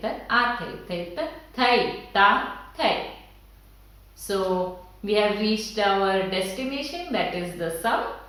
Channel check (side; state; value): both; identical; correlation 1.00